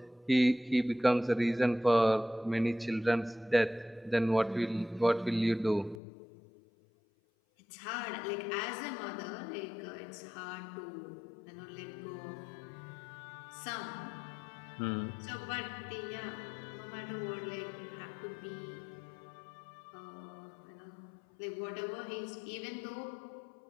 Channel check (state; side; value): drops out; right; at 6.0 s